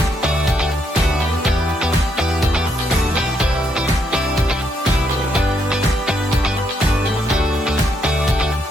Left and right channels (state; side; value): normal; both; correlation 0.76